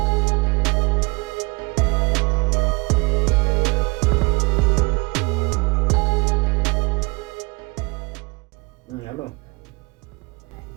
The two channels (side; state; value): left; quieter; 26.9 dB